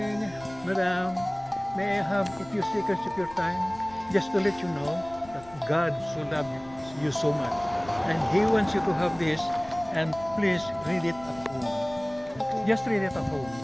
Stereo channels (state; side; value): noise; left; rumble, 21 dB below the sound